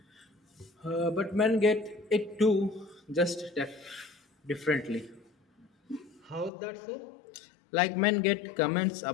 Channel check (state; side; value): drops out; right; at 6.5 s